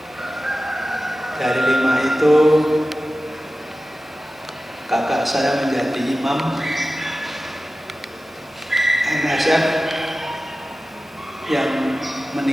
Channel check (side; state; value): both; normal; correlation 0.95